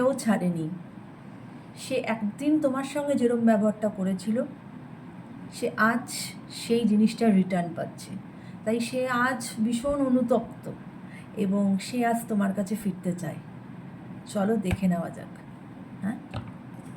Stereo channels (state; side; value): identical; both; correlation 1.00